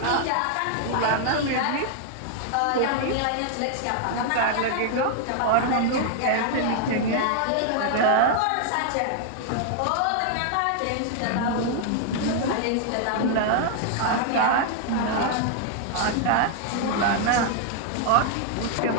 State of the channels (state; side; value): different; both; correlation 0.00